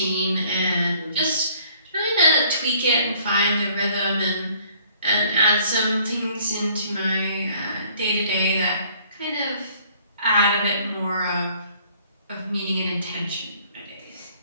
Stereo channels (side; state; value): both; inverted; correlation -0.59